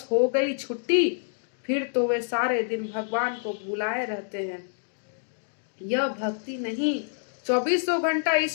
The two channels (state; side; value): silent; right; digital silence